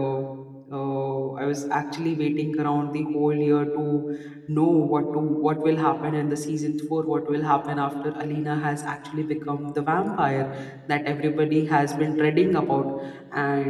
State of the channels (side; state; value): both; identical; correlation 1.00